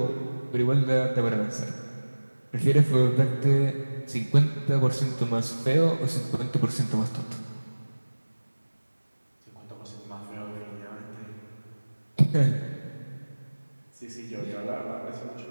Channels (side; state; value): both; inverted; correlation -1.00